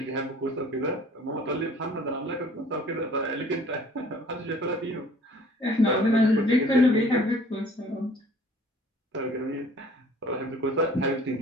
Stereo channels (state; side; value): normal; both; correlation 0.52